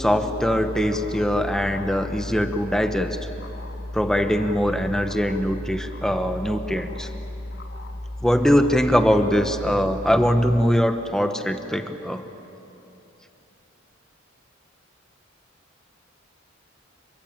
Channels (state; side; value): normal; both; correlation 0.88